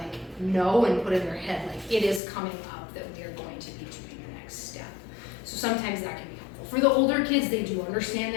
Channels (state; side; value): drops out; right; at 2.2 s